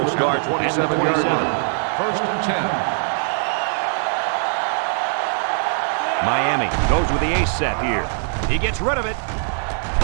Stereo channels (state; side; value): silent; left; 65 dB below the other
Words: will start at the at the 27-yard 27. line. 1st and 10. Miami goes with the ace set here. He gets rid of it.